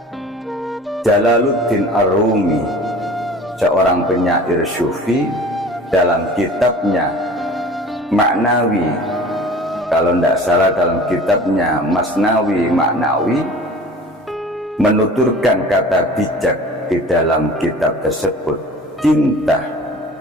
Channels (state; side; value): normal; both; correlation 0.43